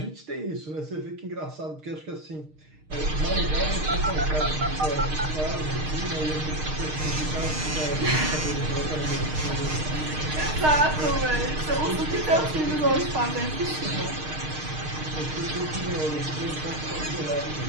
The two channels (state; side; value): late; left; 6.5 ms